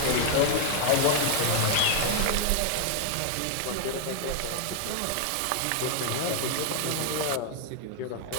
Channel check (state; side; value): different; both; correlation 0.00